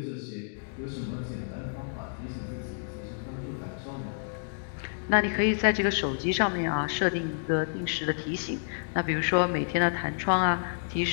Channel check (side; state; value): right; silent; digital silence